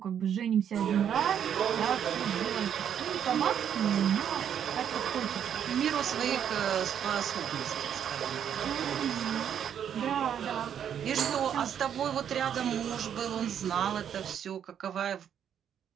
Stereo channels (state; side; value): quieter; left; 8.9 dB